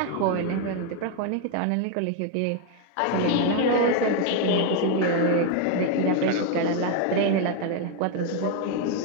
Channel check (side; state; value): both; different; correlation 0.01